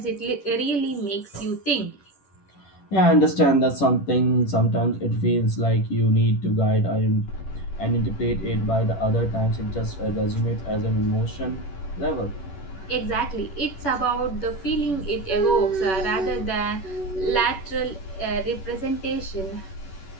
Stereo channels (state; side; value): late; right; 10 ms